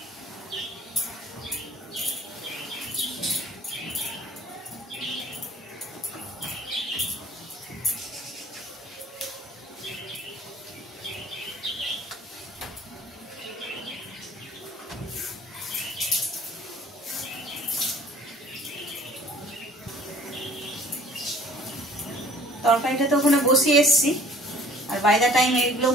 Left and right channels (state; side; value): normal; both; correlation 0.52